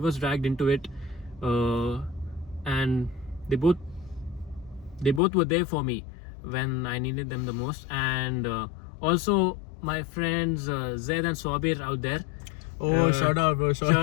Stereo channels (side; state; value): right; drops out; at 5.2 s